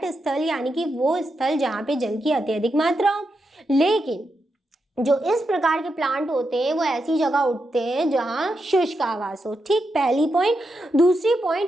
स्थल यानी कि वो स्थल जहाँ पे जल की अत्यधिक मात्रा हो। लेकिन जो इस प्रकार के प्लांट होते हैं वो ऐसी जगह उगते हैं जहाँ शुष्क आवास हो। ठीक, पहली पॉइंट। दूसरी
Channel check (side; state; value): both; normal; correlation 0.85